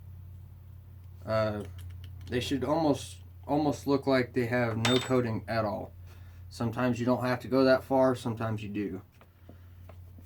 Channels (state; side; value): identical; both; correlation 1.00